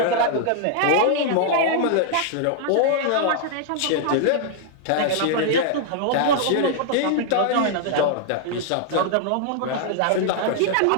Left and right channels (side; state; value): both; different; correlation -0.01